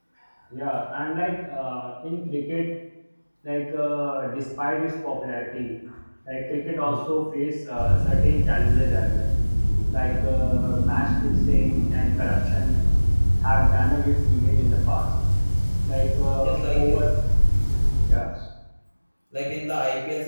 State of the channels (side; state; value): both; inverted; correlation -1.00